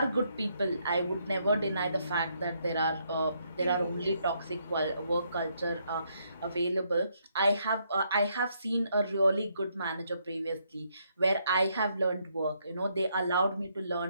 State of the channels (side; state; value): both; inverted; correlation -0.74